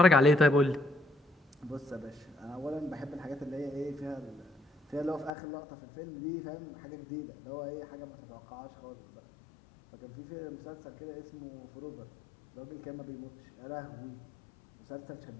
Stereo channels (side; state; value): right; drops out; at 5.3 s